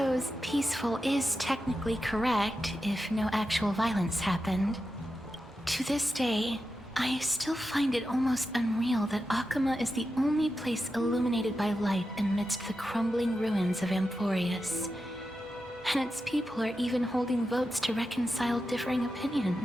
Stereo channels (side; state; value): both; normal; correlation 0.90